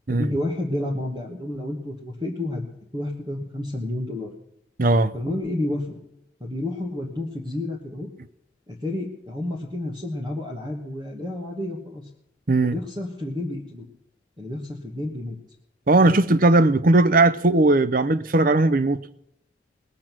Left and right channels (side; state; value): both; normal; correlation 0.48